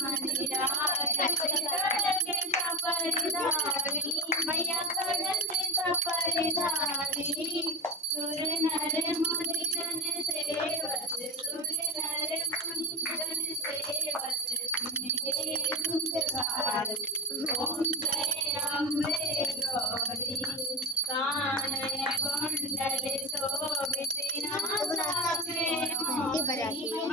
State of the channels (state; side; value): normal; both; correlation 0.19